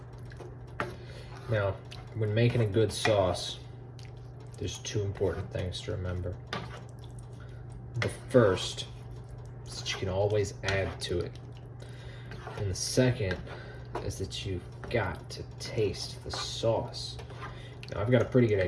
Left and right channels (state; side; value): identical; both; correlation 1.00